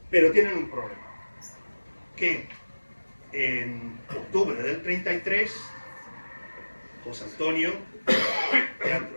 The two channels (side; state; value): both; inverted; correlation -1.00